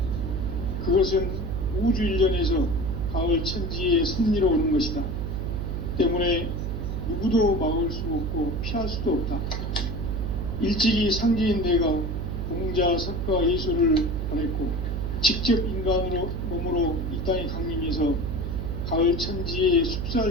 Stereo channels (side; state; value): right; noise; hum, 3 dB below the sound